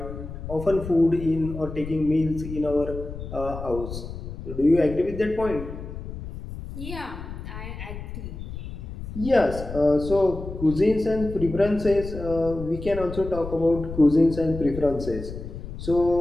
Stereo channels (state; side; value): noise; left; rumble, 9 dB below the sound